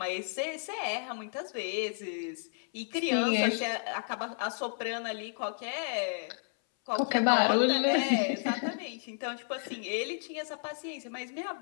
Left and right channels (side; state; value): right; silent; 56 dB below the other